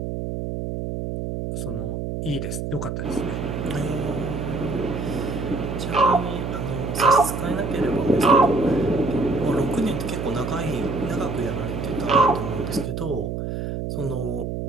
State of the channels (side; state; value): right; noise; hum, 4 dB below the sound